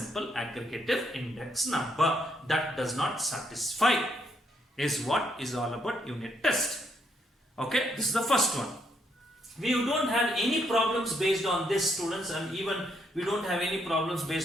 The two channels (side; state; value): both; normal; correlation 0.74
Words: aggregative index number. That does not satisfy, is what is all about unit test. Okay, this is the first one. We don't have any problems based on this, students, and even we don't have any problems